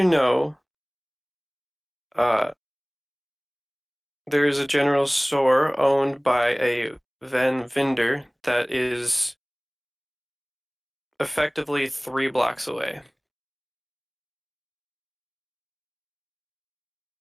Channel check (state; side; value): identical; both; correlation 1.00